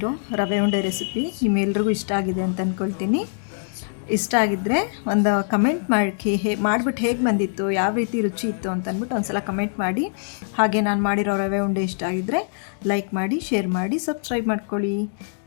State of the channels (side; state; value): right; silent; digital silence